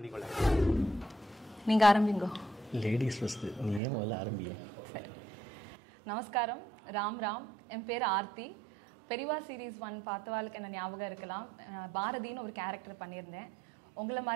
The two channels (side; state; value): left; drops out; at 3.8 s